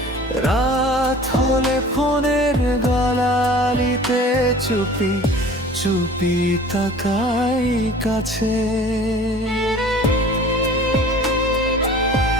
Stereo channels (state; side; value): normal; both; correlation 0.45